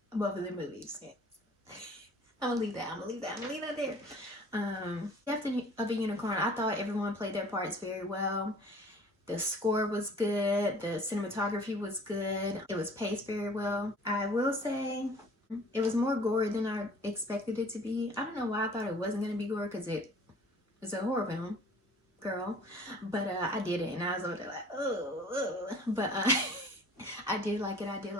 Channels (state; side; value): normal; both; correlation 0.50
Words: both of the movies. I'm gonna leave that there. Death of a Unicorn, I thought everyone played their parts very well. The score was good. The cinematography was good. It was paced very well. I will say it was more gory than I expected it to be. I don't know why I thought it wasn't going to be gory, because it was a horror film, girl. But I did it, and I was over there like, oh. But I did like